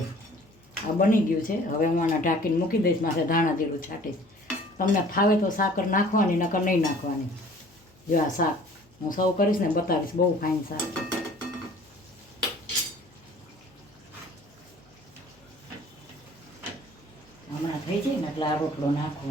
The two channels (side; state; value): left; noise; hum, 29 dB below the sound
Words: આ બની ગયું છે. હવે હું આને ઢાંકીને મૂકી દઈશ. માથે ધાણા જીરું છાંટીશ. તમને ફાવે તો સાકર નાખવાની, નકર નહીં નાખવાની. જો આ શાક હું સર્વ કરીશ ને બતાવીશ. બહુ ફાઇન શાક છે. હમણાં થઈ જાય ને એટલે આ રોટલો